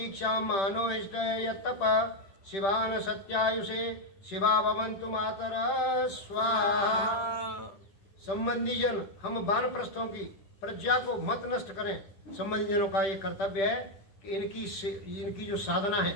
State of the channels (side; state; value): right; late; 10 ms